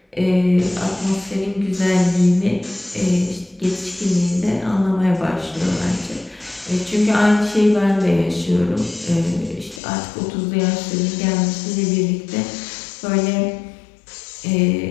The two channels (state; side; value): drops out; right; at 9.8 s